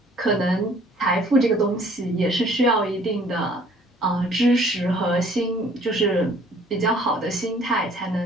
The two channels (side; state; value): both; normal; correlation 0.56